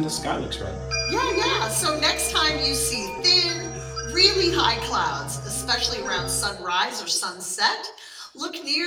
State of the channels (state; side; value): identical; both; correlation 1.00